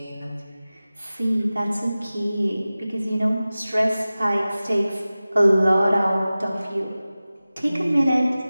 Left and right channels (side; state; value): both; inverted; correlation -0.97